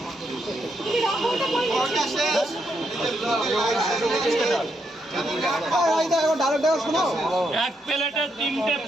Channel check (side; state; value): both; normal; correlation 0.79